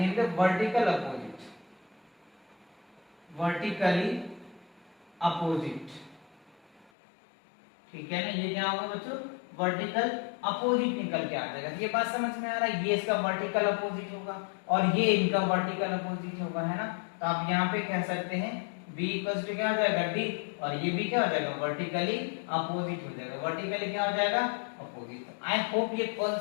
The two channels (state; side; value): drops out; right; at 6.9 s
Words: वर्टिकल अपोजिट, वर्टिकली अपोजिट, ठीक है ना। ये क्या होगा बच्चों, वर्टिकल अपोजिट निकल के आ जाएगा। ये बात समझ में आ रहा है, ये इसका वर्टिकल अपोजिट होगा और ये इनका वर्टिकल अपोजिट होगा, है ना। तो आप यहाँ पे कह सकते हैं b इक्वल टू क्या हो जाएगा, d, और ये भी क्या हो जाएगा, वर्टिकली अपोजिट हो जाएगा। वर्टिकली क्या हो जाएगा, अपोजिट। आई होप ये